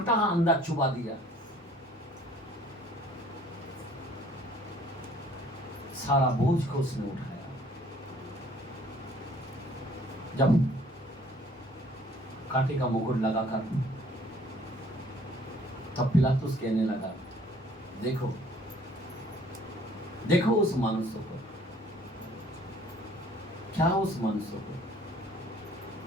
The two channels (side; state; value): both; normal; correlation 0.56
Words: अंदर चुबा दिया, सारा बोझ को उसने उठाया। जब कांटे का मुकुट लगाकर तब पिलातुस कहने लगा, देखो देखो उस मनुष्य को, क्या उस मनुष्य को,